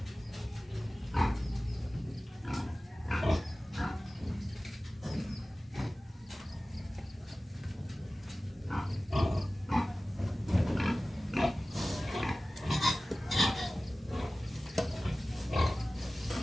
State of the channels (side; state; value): both; normal; correlation 0.97